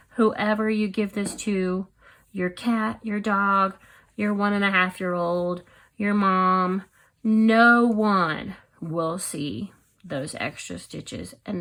whoever you give this to, your cat, your dog, your 1.5-year-old, your mom, no one will see those extra stitches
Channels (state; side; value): identical; both; correlation 1.00